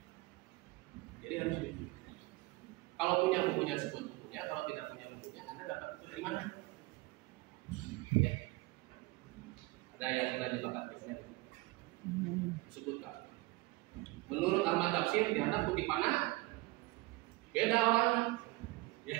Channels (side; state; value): left; quieter; 22.1 dB